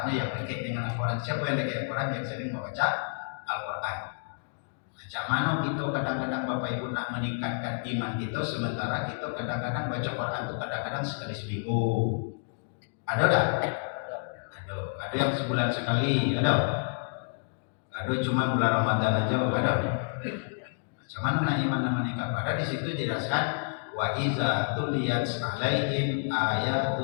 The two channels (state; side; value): silent; right; digital silence